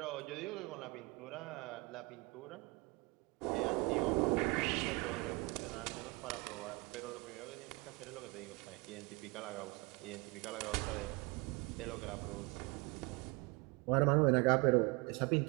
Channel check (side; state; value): left; quieter; 26.8 dB